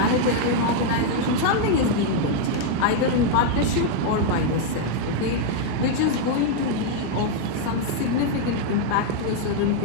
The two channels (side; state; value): both; different; correlation 0.00